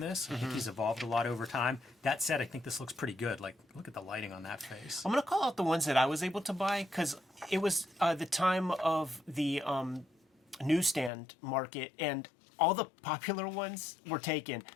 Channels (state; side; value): drops out; right; at 11.1 s